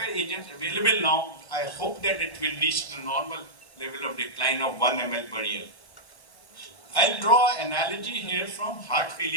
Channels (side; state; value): right; late; 1.0 ms